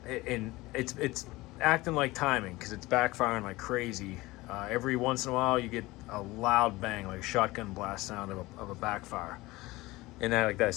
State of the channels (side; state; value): right; quieter; 20.1 dB